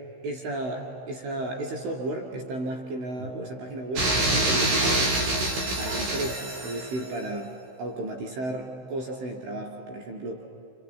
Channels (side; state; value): left; late; 16 ms